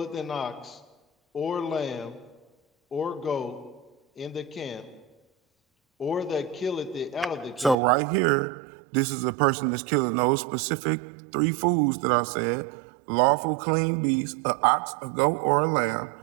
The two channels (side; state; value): left; drops out; at 7.8 s